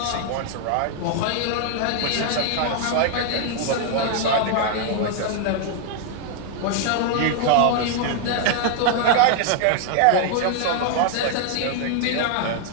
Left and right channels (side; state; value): both; different; correlation 0.00